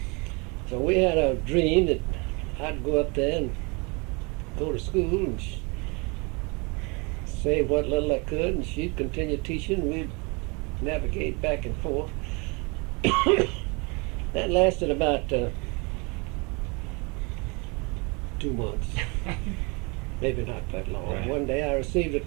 So we had a dream that I'd go up there and go to school and save what little I could, and she'd continue teaching. We'd navigate back and forth. That lasted about 2 months. Maybe not that long. Right. One day I received a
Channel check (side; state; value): left; quieter; 29.7 dB